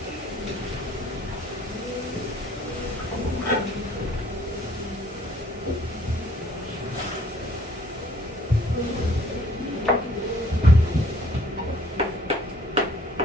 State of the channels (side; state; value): both; normal; correlation 0.58